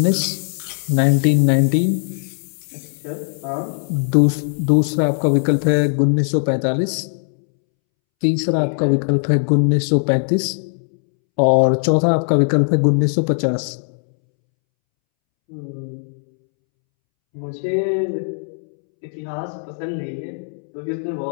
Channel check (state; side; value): silent; right; 66 dB below the other